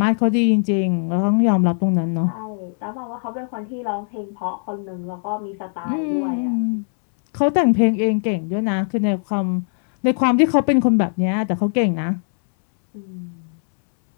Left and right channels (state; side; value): silent; right; 65 dB below the other